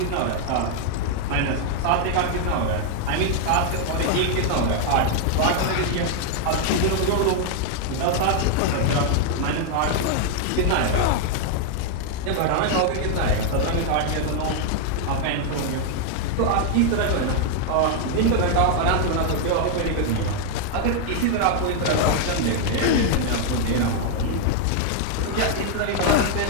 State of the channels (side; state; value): both; different; correlation 0.00